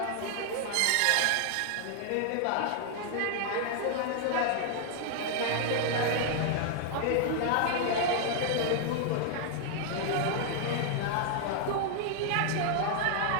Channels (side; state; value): both; different; correlation 0.00